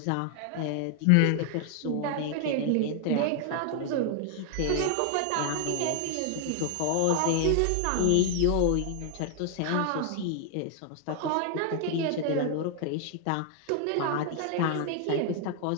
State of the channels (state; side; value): different; both; correlation 0.00